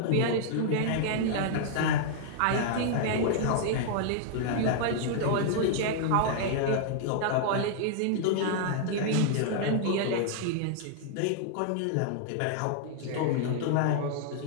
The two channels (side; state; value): both; different; correlation -0.01